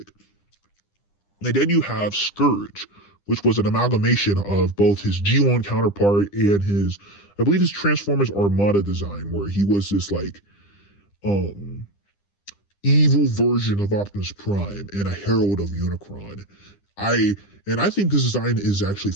And then you have Scourge, which was an amalgamation of both his G1 counterpart and I believe his Transformers Armada design, where he was this evil version of Optimus Prime and a herald of Unicron. I think this design is actually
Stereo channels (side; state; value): right; late; 10 ms